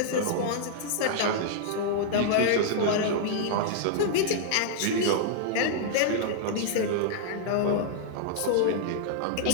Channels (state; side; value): different; both; correlation -0.01